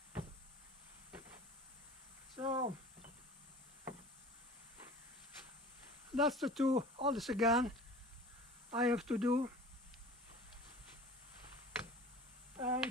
So that's the two others again I have to do, and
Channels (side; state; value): both; normal; correlation 0.41